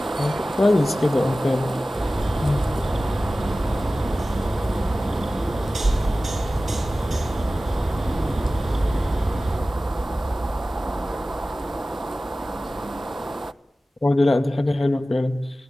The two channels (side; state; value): both; normal; correlation 0.96